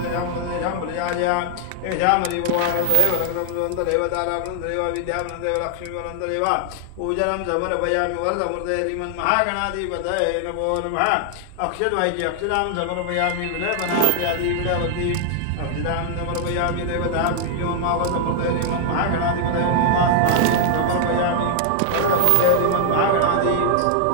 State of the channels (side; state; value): both; different; correlation 0.00